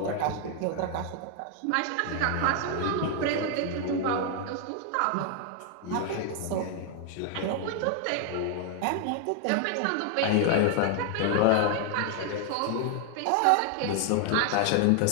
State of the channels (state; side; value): different; both; correlation 0.00